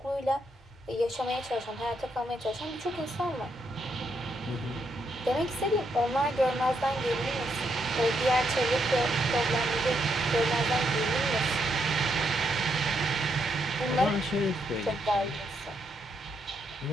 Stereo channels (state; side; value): normal; both; correlation 0.78